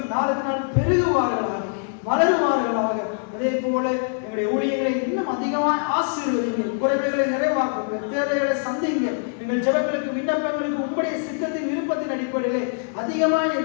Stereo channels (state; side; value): silent; right; digital silence